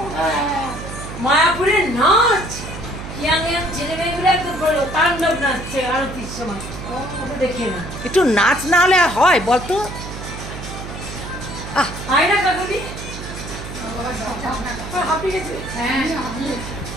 মায়াপুরের নাচ ইয়াং ইয়াং ছেলে মেয়েগুলো একদম বলো তাণ্ডব নাচছে আরতির সময়, দেখে না একটু নাচ না হলে হয় বলতো? হয় না কাকুলি?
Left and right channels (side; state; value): right; noise; hum, 10 dB below the sound